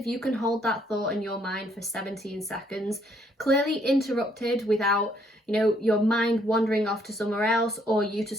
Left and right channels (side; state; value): both; normal; correlation 0.68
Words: you can hold that thought in your mind for 17 seconds, clearly interrupted without, your mind wandering off to somewhere else or you to